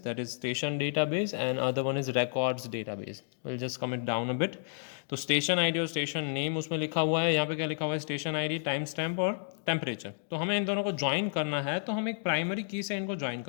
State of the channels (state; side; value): silent; right; digital silence